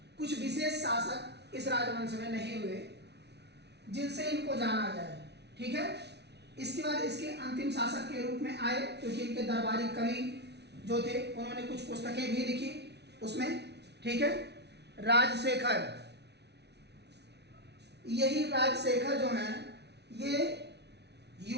कुछ विशेष शासक इस राजवंश में नहीं हुए जिनसे इनको जाना जाए। ठीक है, इसके बाद इसके अंतिम शासक के रूप में आए, क्योंकि इनके दरबारी कवि जो थे उन्होंने कुछ पुस्तकें भी लिखी उसमें। ठीक है, राजशेखर। यही राजशेखर जो हैं ये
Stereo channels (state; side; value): late; left; 0.49 ms